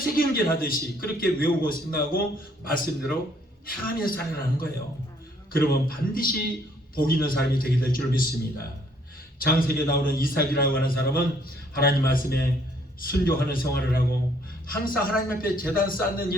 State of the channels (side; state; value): both; normal; correlation 0.65